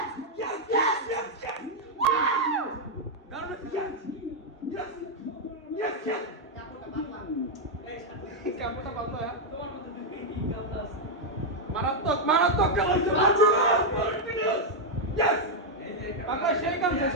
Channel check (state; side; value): normal; both; correlation -0.01